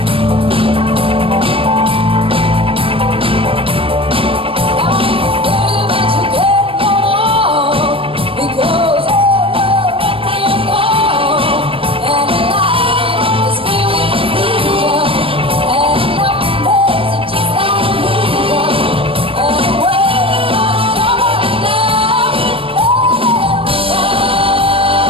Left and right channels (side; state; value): left; late; 0.26 ms